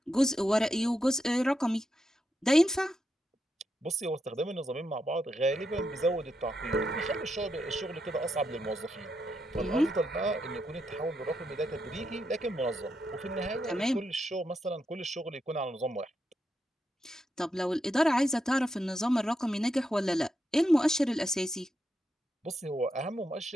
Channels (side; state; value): both; normal; correlation 0.83